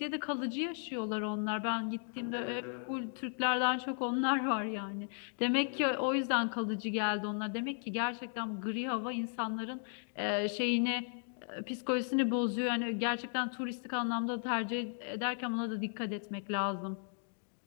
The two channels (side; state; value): right; silent; 54 dB below the other